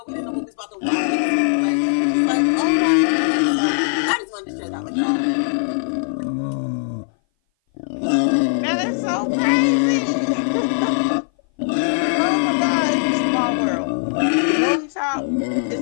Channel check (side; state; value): right; silent; 58 dB below the other